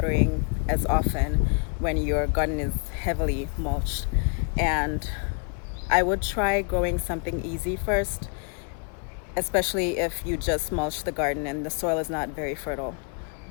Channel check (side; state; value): right; quieter; 38.1 dB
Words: as often when your garden is heavily mulched. And I would try growing something easy first, especially if you just mulch the garden and the soil is not very fertile.